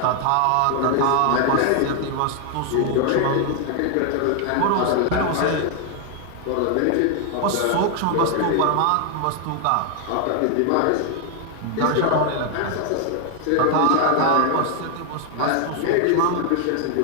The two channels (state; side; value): different; both; correlation 0.00